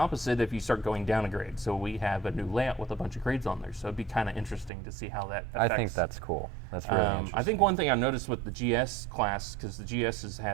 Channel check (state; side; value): drops out; left; at 4.7 s